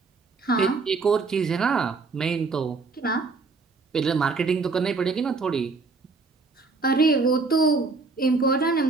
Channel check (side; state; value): left; quieter; 4.1 dB